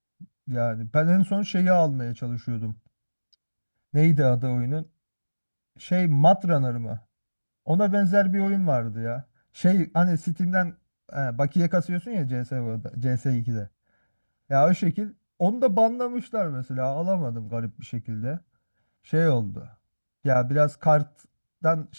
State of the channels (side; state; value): both; inverted; correlation -1.00